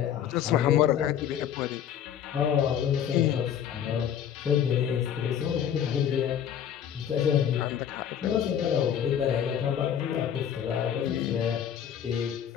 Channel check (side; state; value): right; quieter; 9.2 dB